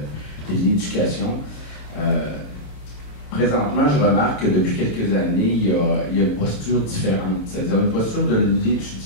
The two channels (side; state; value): right; late; 28 ms